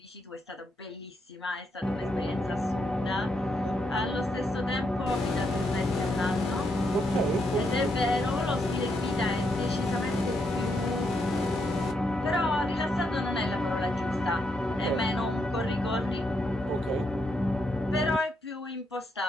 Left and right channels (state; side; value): normal; both; correlation 0.79